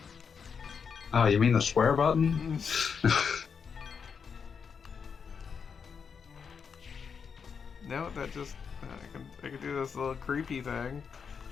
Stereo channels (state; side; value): quieter; right; 6.3 dB